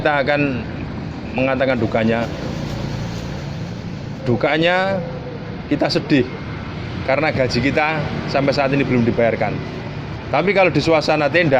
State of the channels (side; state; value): both; identical; correlation 1.00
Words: akan mengatakan dukanya. Dukanya kita sedih karena gaji kita sampai saat ini belum dibayarkan. Tapi kalau di suasana